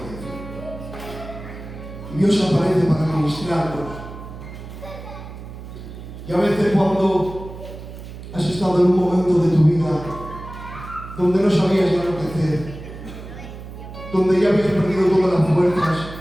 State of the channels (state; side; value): noise; right; hum, 12 dB below the sound